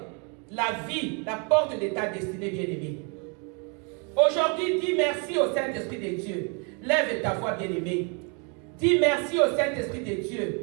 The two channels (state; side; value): quieter; left; 35.4 dB